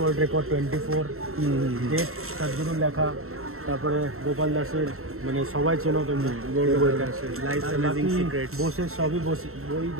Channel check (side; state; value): left; late; 0.63 ms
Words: রেকর্ড 24, ডেট তার জন্য লেখা, তারপরে গোপাল দাসের, মানে সবাই চেনো তুমি বইটা, বোসের সবই বই